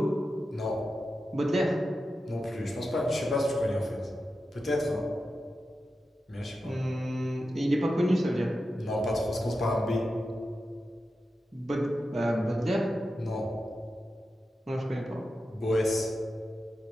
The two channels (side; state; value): both; normal; correlation 0.91